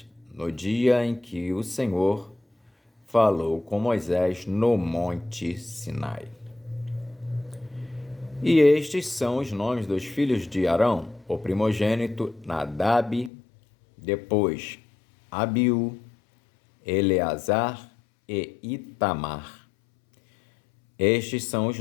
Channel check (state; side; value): drops out; right; at 13.3 s